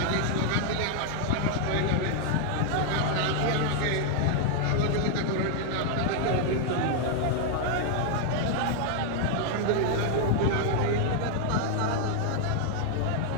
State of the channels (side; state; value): both; different; correlation 0.00